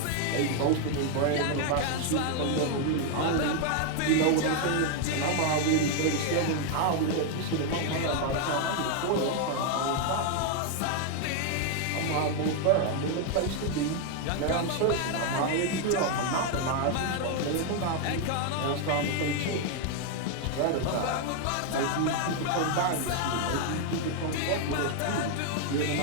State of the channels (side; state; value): both; different; correlation 0.01